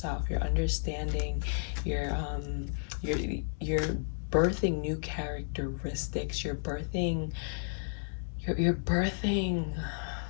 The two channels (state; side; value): silent; right; 56 dB below the other